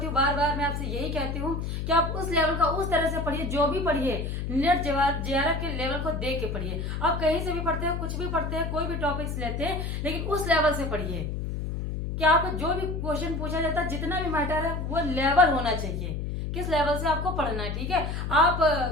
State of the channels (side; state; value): left; noise; hum, 3 dB below the sound